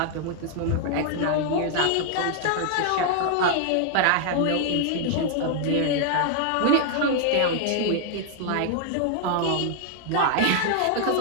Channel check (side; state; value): both; different; correlation 0.00